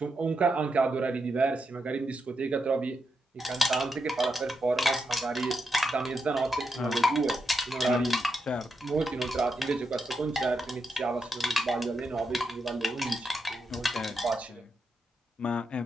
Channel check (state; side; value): normal; both; correlation 0.84